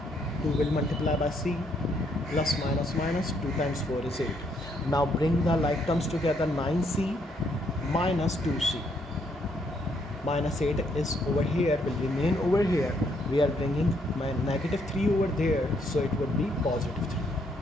2 will multiply by c, plus minus minus 2 times 4 is 8. Now bring the like terms together, 9c minus 2c. Minus 8 is over here, will remain over here. We are bringing my negative 3 over there, so it would be positive 3.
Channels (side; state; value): both; normal; correlation 0.72